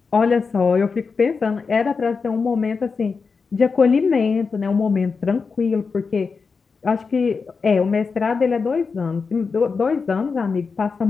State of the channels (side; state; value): right; quieter; 5.0 dB